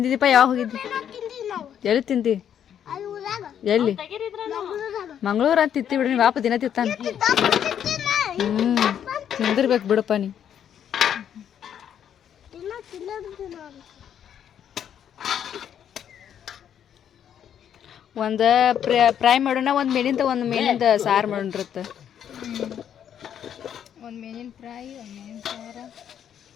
ಯಾವಾಗ ಹೋಗಿದ್ದಿ? ಎಲ್ಲಿ ತಿಂದಿ? ಎಲ್ಲಿ? ಮಂಗಳೂರು ಅಂತ ತಿತ್ತಿ ಬಿಡ್ರಿ. ವಾಪ ದಿನ ತಿತ್ತಾನ. ತಿಂದಿರ್ಬೇಕು ಬಿಡಪ್ಪ ನೀ. ಒಂದು ಫ್ರೈ ಮಾಡೋಣ, ಒಂದು ಮೇನಿಂದ ಸಾರು ಮಾಡೋಣ್ರತ್ತ. ಒಂದು ಮೇನಿನ ಫ್ರೈ, ಒಂದು ಮೇನಿನ ಸಾರು,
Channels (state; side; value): quieter; right; 9.2 dB